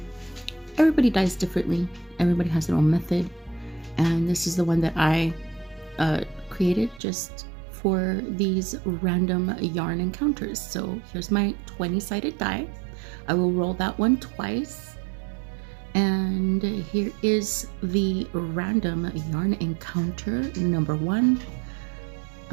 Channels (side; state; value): left; drops out; at 7.0 s